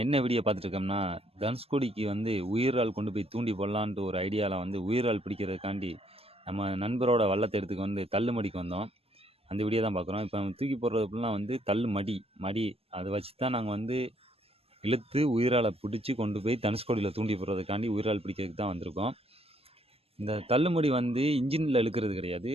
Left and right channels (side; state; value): left; late; 0.29 ms